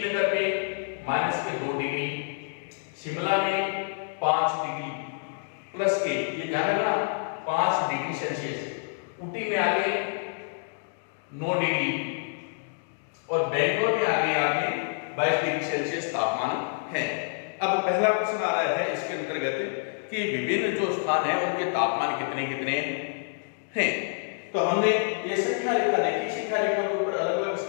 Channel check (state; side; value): silent; right; digital silence